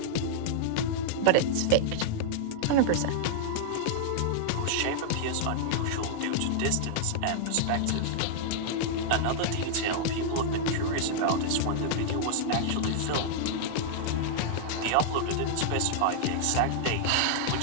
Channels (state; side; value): different; both; correlation -0.01